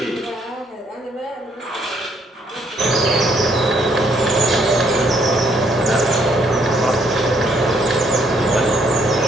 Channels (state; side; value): normal; both; correlation 0.68